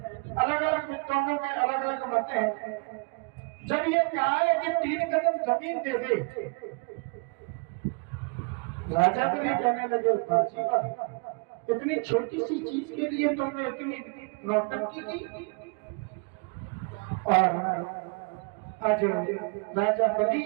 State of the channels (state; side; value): quieter; left; 35.1 dB